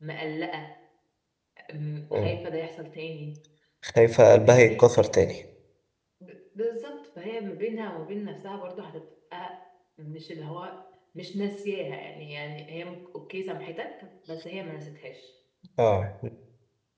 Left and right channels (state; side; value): identical; both; correlation 1.00